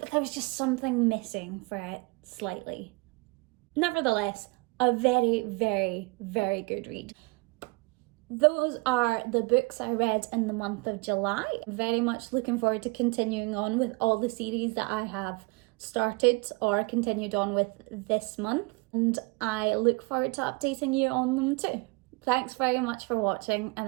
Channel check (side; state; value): left; quieter; 27.4 dB